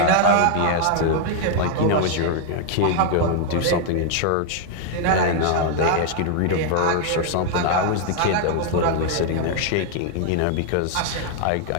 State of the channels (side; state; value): both; different; correlation 0.00